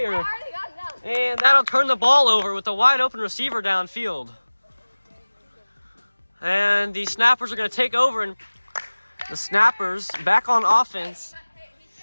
And that'll turn the ball over with a wide open receiver downfield. And the Snappers are gonna take over, and the Snappers back on offense.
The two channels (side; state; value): both; inverted; correlation -1.00